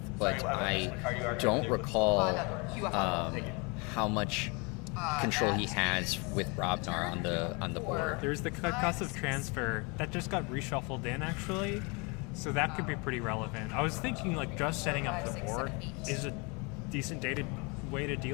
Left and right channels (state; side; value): quieter; right; 30.4 dB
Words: but I don't recall how much control he has with Brobnar on the board. There's the concussive transfer that just got reshuffled in, actually, so that could be pretty relevant. I was thinking just setting up the board is a decent way to